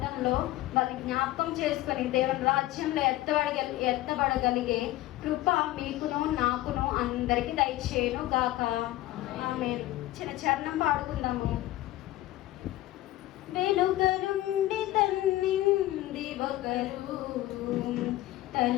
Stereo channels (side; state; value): right; quieter; 16.2 dB